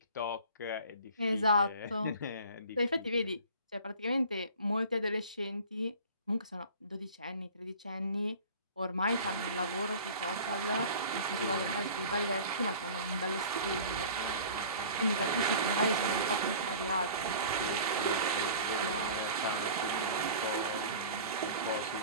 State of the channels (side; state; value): both; inverted; correlation -0.42